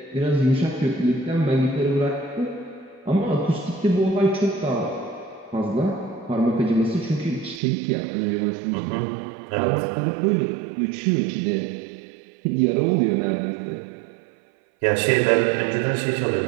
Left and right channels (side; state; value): left; drops out; at 7.6 s